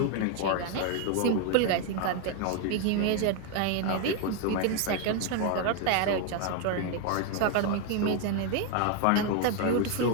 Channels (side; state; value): both; different; correlation 0.01